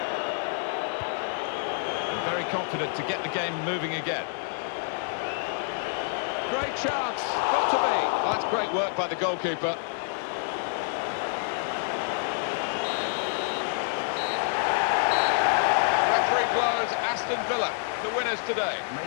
And very confident to get the game moving again. Great chance. Got to be. Well, that's great work by the goalkeeper. Referee blows Aston Villa, the winners today.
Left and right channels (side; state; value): right; silent; digital silence